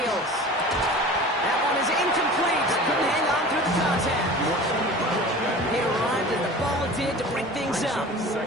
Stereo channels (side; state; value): both; normal; correlation 0.39